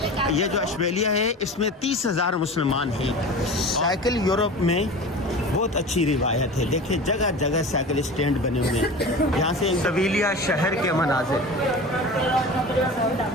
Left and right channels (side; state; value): both; normal; correlation 0.34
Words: یہ جو اشبیلیہ ہے اس میں 30,000 مسلمان ہیں. سائیکل یورپ میں بہت اچھی روایت ہے. دیکھیں جگہ جگہ سائیکل اسٹینڈ بنے ہوئے ہیں. یہاں سے سویلیا شہر کے مناظر,